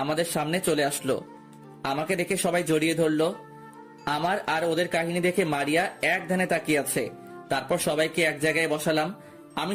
আমাদের সামনে চলে আসলো। আমাকে দেখে সবাই জড়িয়ে ধরলো। আমার আর ওদের কাহিনী দেখে মারিয়া এক ধ্যানে তাকিয়ে আছে। তারপর সবাইকে এক জায়গায় বসালাম। আমি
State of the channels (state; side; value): identical; both; correlation 1.00